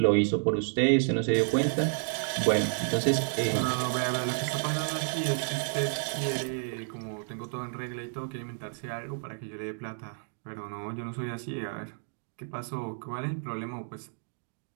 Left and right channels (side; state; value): left; silent; digital silence